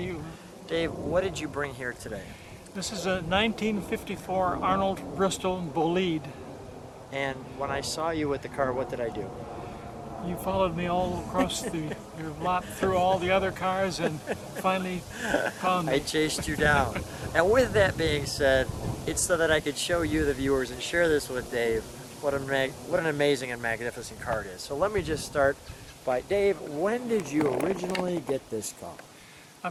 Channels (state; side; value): identical; both; correlation 1.00